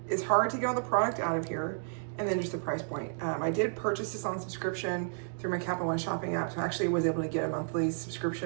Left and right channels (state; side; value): silent; left; digital silence